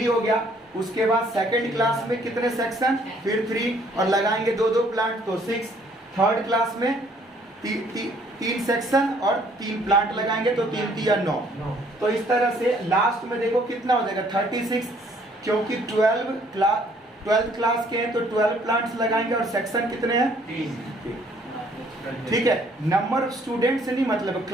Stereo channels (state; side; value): normal; both; correlation 0.62